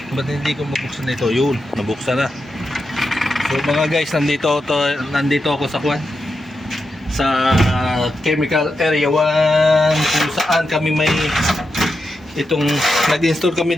Ba't hindi ko mabuksan ito? Yun, nabuksan na. So mga guys, nandito ako sa sa chemical area 1 kung saan kami may itong nag-install kami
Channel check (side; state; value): both; normal; correlation 0.87